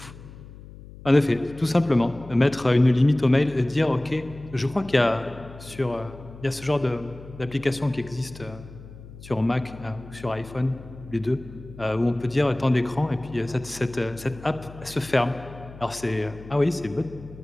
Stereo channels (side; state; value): left; noise; hum, 17 dB below the sound